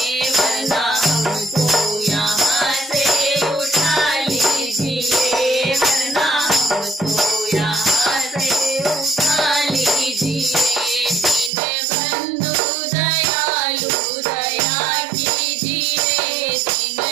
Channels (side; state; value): left; drops out; at 11.5 s